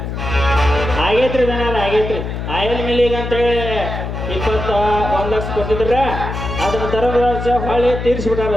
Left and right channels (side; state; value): left; noise; hum, 5 dB below the sound